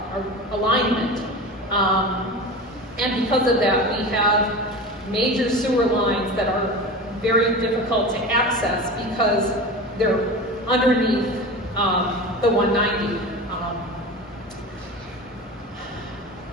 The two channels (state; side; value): normal; both; correlation 0.30